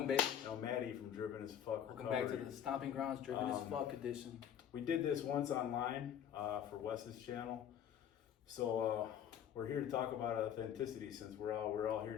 baby. Maddie from Driven as Fuck Welcome Recovery. back to the Stomping Grounds Driven as Fuck edition. We did this once online for Wes's channel. So we're here to talk about authenticity, since we're all here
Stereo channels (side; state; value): right; quieter; 9.4 dB